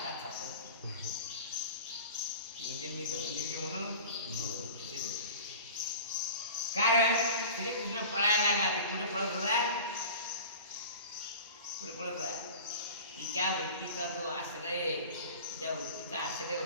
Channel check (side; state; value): both; inverted; correlation -0.38